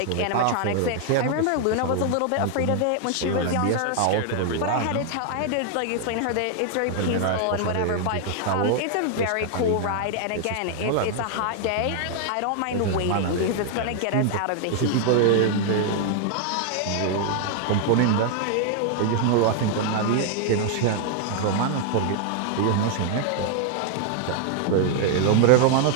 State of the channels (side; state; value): both; different; correlation 0.00